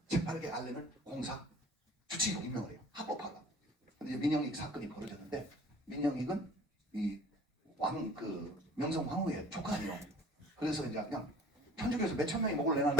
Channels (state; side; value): normal; both; correlation 0.47